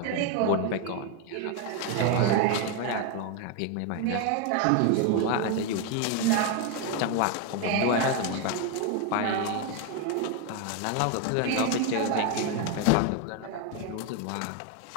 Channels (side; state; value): both; different; correlation 0.01